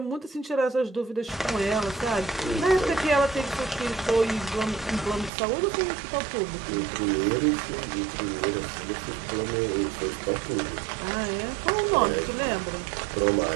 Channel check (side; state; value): left; drops out; at 5.3 s